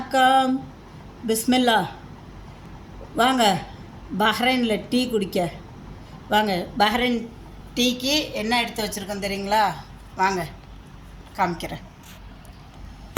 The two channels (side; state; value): both; identical; correlation 1.00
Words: பிஸ்மில்லா. வாங்க பஹ்ரைனில் டீ குடிக்க வாங்க. பஹ்ரைன் டீக்கு என்ன எடுத்து வச்சுருக்கோம் தெரியுங்களா? வாங்க காமிக்கிறேன்.